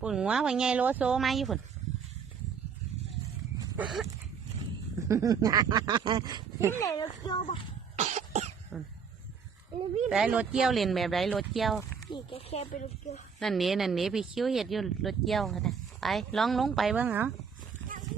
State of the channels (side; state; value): left; quieter; 6.4 dB